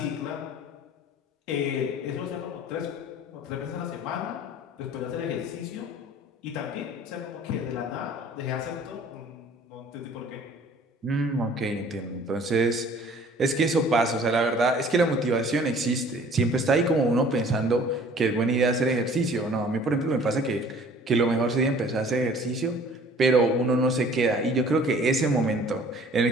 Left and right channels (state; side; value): normal; both; correlation 0.51